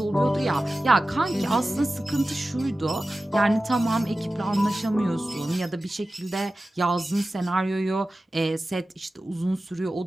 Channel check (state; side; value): normal; both; correlation 0.95